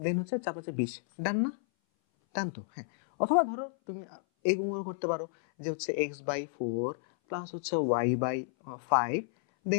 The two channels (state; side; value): silent; right; 57 dB below the other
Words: হচ্ছে 4 5 20, ডান না? ডান তো? হ্যাঁ, অথবা ধরো তুমি এইগুলো করতে পারো, যে হচ্ছে x/4 প্লাস হচ্ছে y/5